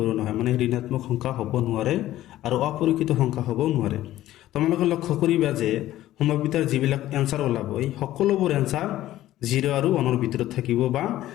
নহয়। মানে ঋণাত্মক সংখ্যা হ'ব নোৱাৰে আৰু অপৰিচিত সংখ্যা হ'ব নোৱাৰে। তোমালোকে লক্ষ্য কৰিবা যে সম্ভাৱিতাৰ যিবিলাক এনচাৰ ওলাব এই সকলোবোৰ এনচাৰ 0 আৰু 1ৰ ভিতৰত থাকিব বা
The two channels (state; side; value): quieter; right; 14.4 dB